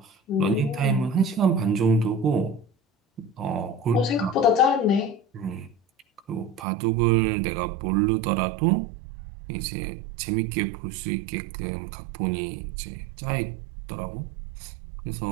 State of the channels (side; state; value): left; drops out; at 6.7 s